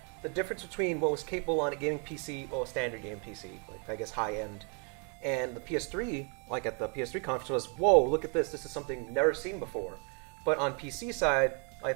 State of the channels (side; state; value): left; quieter; 37.8 dB